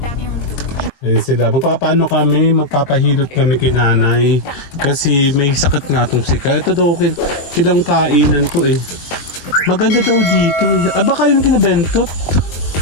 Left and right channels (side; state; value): right; late; 22 ms